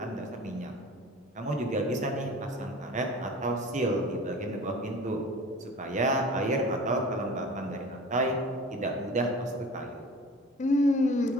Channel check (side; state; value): both; normal; correlation 0.40